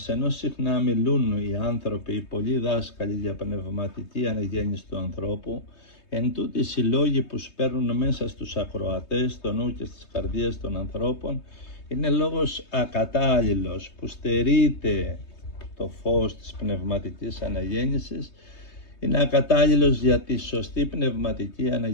ενώ συχνά μιλούν οι άνθρωποι, οι πολλοί δάσκαλοι για πνευματική αναγέννηση του ανθρώπου, εν τούτοις οι λόγοι που σπέρνουν μέσα στους ακροατές, στο νου και στις καρδίες των ανθρώπων, είναι λόγος ακατάλληλος που στερείται το φως της πνευματικής αναγέννησης, είναι ακατάλληλος για τη σωστή πνευματική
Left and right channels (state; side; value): late; right; 3.2 ms